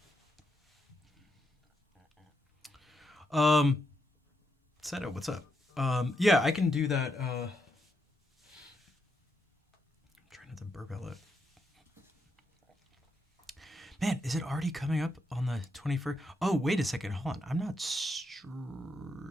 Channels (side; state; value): both; normal; correlation 0.81